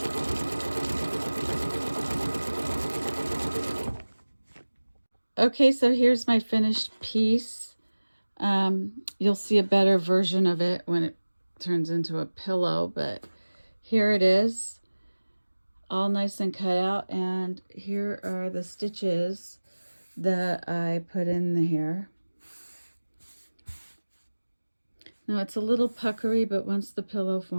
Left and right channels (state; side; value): inverted; both; correlation -1.00